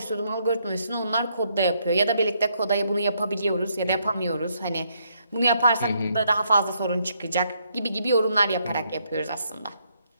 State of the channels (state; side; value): inverted; both; correlation -0.73